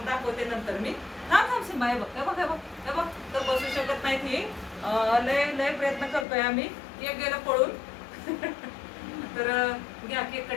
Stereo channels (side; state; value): right; drops out; at 6.2 s